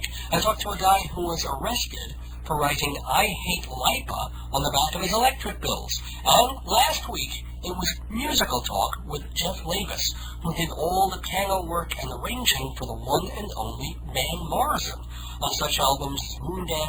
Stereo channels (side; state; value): both; identical; correlation 1.00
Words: I talked to a guy who was arrested for writing I Hate Lipa on the back of his electric bills. And last week, it was musical talk with Jeff Labus, who did all the piano work and arranging for the one and only Van Morrison on such albums as